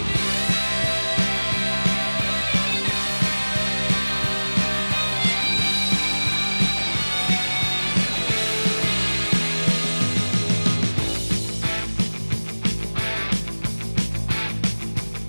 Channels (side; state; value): both; inverted; correlation -1.00